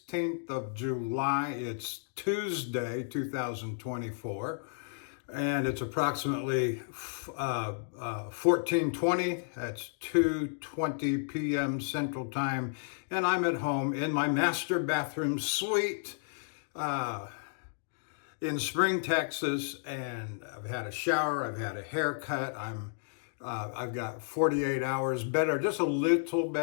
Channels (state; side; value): silent; right; digital silence